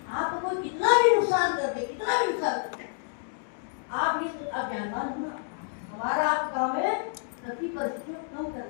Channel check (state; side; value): silent; right; digital silence